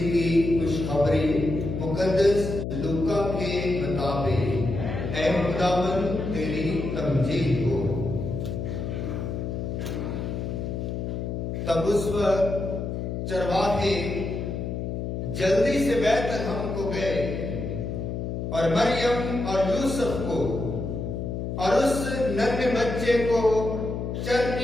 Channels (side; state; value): left; noise; hum, 4 dB below the sound